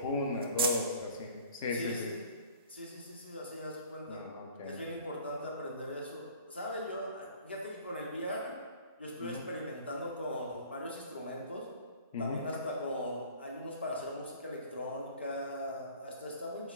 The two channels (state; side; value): inverted; both; correlation -0.48